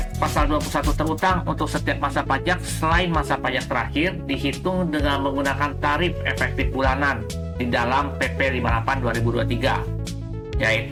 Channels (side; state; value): both; identical; correlation 1.00